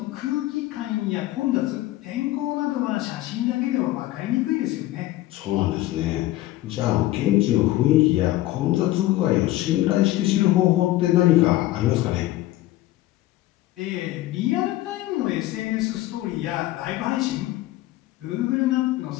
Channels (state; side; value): quieter; right; 16.0 dB